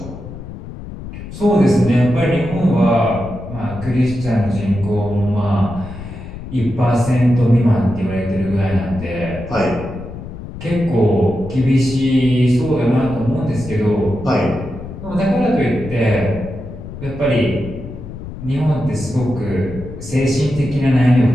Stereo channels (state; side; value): noise; left; rumble, 11 dB below the sound